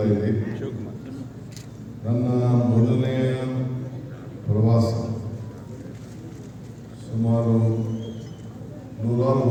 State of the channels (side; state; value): both; identical; correlation 1.00